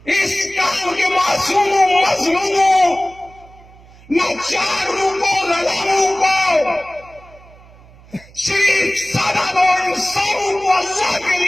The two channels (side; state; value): right; noise; hum, 24 dB below the sound